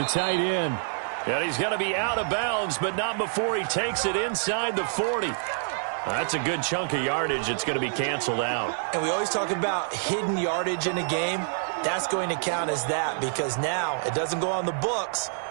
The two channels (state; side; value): silent; left; digital silence